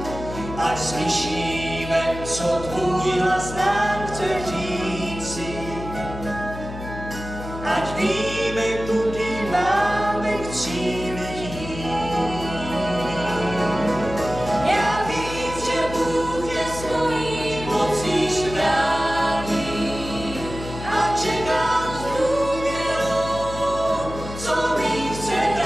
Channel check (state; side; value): noise; left; hum, 10 dB below the sound